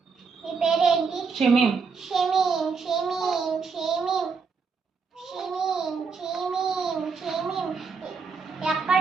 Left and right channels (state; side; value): quieter; left; 5.2 dB